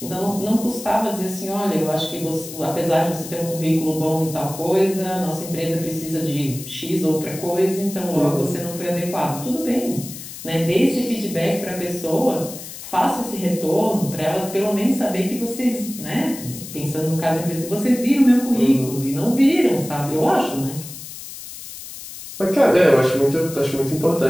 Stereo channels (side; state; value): left; noise; hiss, 12 dB below the sound